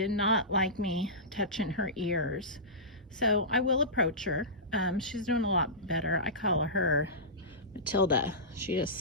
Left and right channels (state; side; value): normal; both; correlation -0.20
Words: not like me touching her ears. So I will approach her. She's doing a lot better. I call her Matilda. She